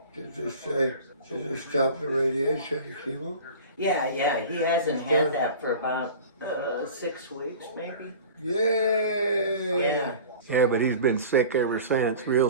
Did they stop the radiation and chemo? Yeah, he hasn't had that for about 6 weeks maybe. Yay! Yeah, but he's been sick ever since, real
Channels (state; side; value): inverted; both; correlation -0.39